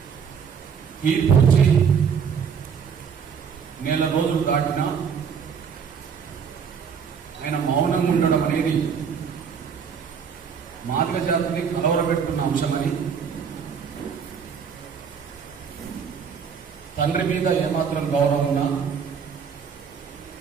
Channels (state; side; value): quieter; left; 6.7 dB